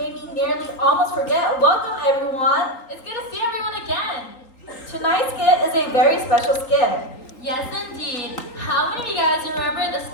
me nearly almost forget. Welcome, everyone. It's good to see everyone again. Tonight's skit is a very special skit. Yes, indeed. How many of you guys remember the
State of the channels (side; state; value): right; late; 3.8 ms